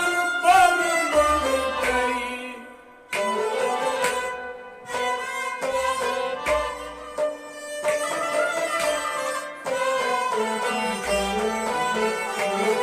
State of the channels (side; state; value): both; identical; correlation 1.00